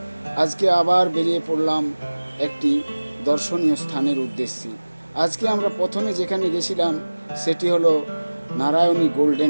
আজকে আবার বেরিয়ে পড়লাম একটি দর্শনীয় স্থানের উদ্দেশ্যে। আজকে আমরা প্রথমে যেখানে গেছিলাম সেটি হলো নারায়ণী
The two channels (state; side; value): inverted; both; correlation -1.00